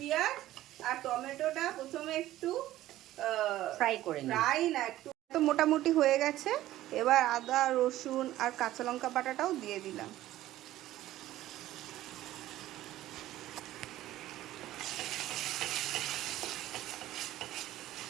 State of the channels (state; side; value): quieter; left; 14.7 dB